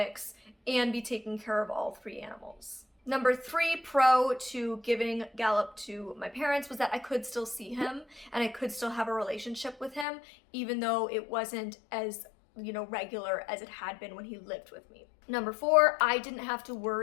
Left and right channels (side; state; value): right; drops out; at 10.1 s